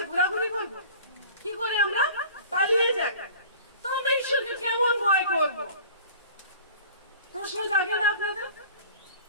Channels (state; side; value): inverted; both; correlation -0.44